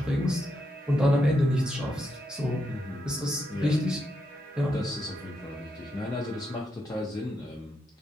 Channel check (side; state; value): both; normal; correlation 0.82